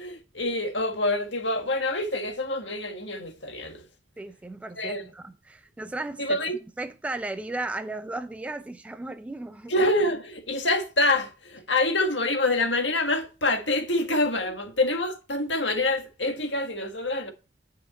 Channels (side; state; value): both; normal; correlation -0.01